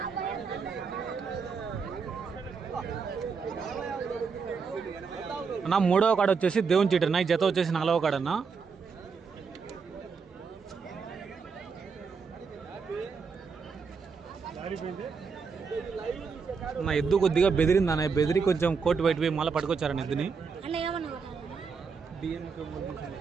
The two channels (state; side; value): quieter; left; 5.4 dB